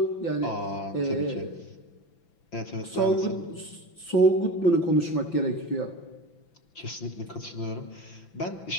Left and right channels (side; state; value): right; late; 6.0 ms